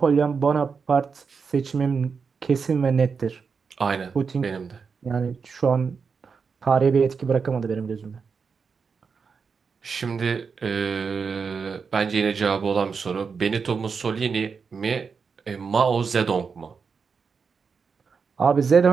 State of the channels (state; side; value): quieter; left; 5.5 dB